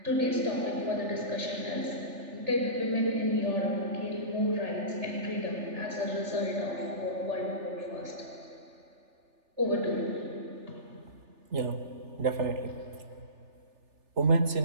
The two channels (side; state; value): left; late; 3.4 ms